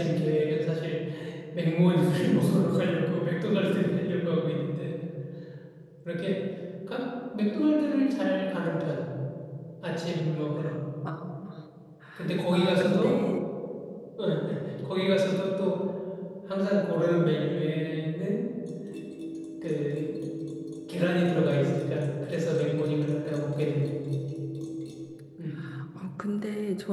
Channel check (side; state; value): both; identical; correlation 1.00